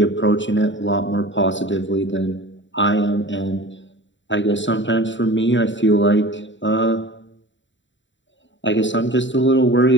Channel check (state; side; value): late; right; 0.54 ms